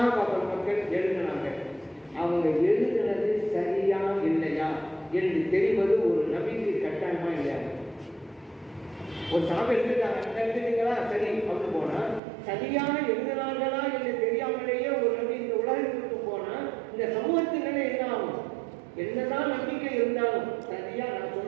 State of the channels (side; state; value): left; drops out; at 12.2 s